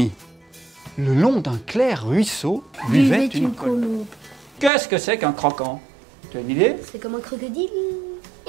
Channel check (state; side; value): drops out; left; at 4.7 s